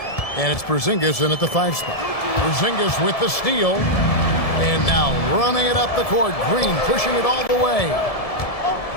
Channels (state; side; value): late; right; 1.7 ms